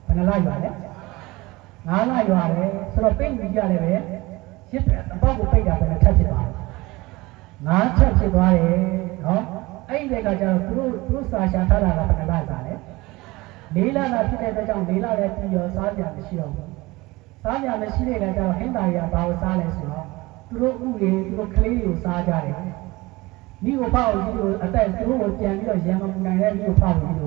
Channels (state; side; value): quieter; left; 21.4 dB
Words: ဘယ်နှလရွာလဲ9လရွာတယ်ဆိုတော့ပိတ်ပြီးကြတယ်ပဲရစ်အပေါက်ကိုပိတ်တာပဲထပ်ဖြစ်သွားတယ်9ချက်ဖြစ်သွားတယ်နော်အဲ့ဒီကကျတော့သူတို့စာရှာထားတာကဘယ်နှလစားလဲလေးလတာဖြစ်တဲ့အတွက်ကြောင့်လေးလလည်းပြီးရောစားကြမရှိတော့ဘူးစားကြမရှိတဲ့အခါကျတော့ဟင်းသားတွေကဘာကိုစားလဲဆိုတော့သူတို့ဥတွေသူတို့ကလေးတွေကိုစားကြတယ်မိကိုဖောက်ပြီးတော့အသက်သူတို့ကိုပြန်ပြီးတော့ရံမပူနိုင်တဲ့မိကိုဖောက်ပြီးတ